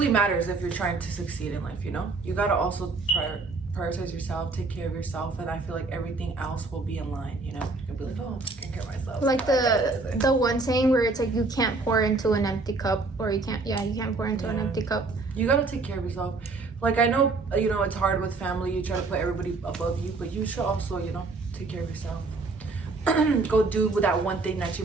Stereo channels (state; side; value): quieter; left; 3.7 dB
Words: matters if you're trying to succeed in life, you know? You gotta also prioritize yourself, take care of yourself, and I feel like everything else will be in line, you know? You'll be like, oh, I can care of myself. Like the one saying where it's like, you can't pour into an empty cup, or you can't pour into an empty cup. You gotta take care of yourself. Like, I know, it's hard with family, you try to put everybody above you, but you should also, take care of yourself. Go do that one thing that